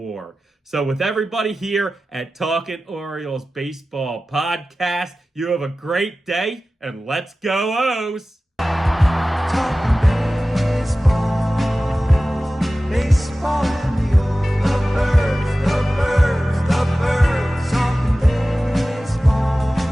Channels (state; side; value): normal; both; correlation 0.96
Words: So with everybody here at Talkin Orioles Baseball Podcast, you have a great day, and let's go O's! Talking